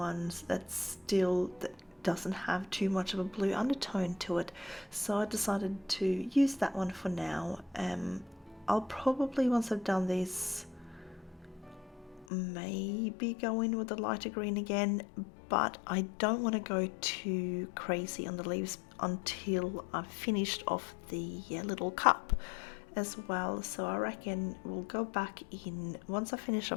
that doesn't have too much of a blue undertone to it, so I decided to use that one for now. I'll probably, once I've done this, maybe go in with the lighter green again, but I don't want to go too crazy on the leaves until I've finished off the little cup as well. So I reckon we'll go back in once I finish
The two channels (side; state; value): right; drops out; at 12.2 s